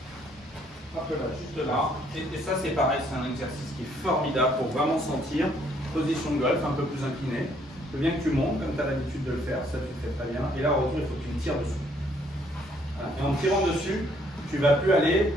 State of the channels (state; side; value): normal; both; correlation 0.66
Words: Un peu là, juste là. Et ça, c'est pareil, c'est un exercice qui est formidable pour vraiment sentir position de golf un peu plus inclinée. Je veux bien que tu montes, comme tu as l'habitude de le faire, ça tu le fais très bien. Et là, au retour, il faut que tu me tires dessus. Voilà. Et en tirant dessus, tu ne vas plus aller.